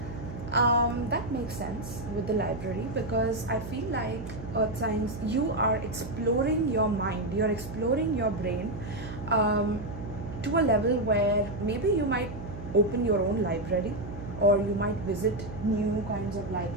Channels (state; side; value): noise; right; hum, 10 dB below the sound